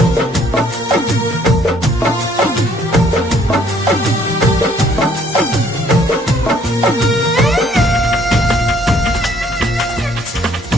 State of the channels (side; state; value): both; normal; correlation 0.63